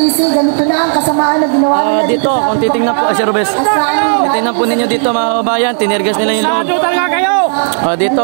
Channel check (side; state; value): left; silent; digital silence